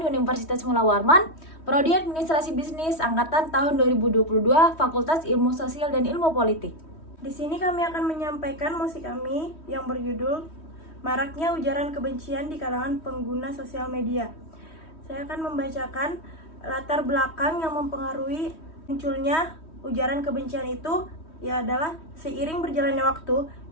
Universitas Mula Warman, Prodi Administrasi Bisnis Angkatan tahun 2022, Fakultas Ilmu Sosial dan Ilmu Politik. Di sini kami akan menyampaikan musik kami yang berjudul Maraknya Ujaran Kebencian di Kalangan Pengguna Sosial Media. Saya akan membacakan latar belakang yang mempengaruhi munculnya ujaran kebencian itu, adalah seiring berjalannya waktu,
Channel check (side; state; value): right; late; 3.1 ms